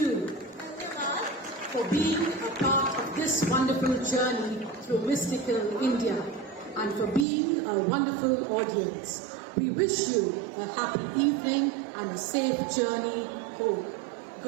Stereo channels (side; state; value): left; drops out; at 7.2 s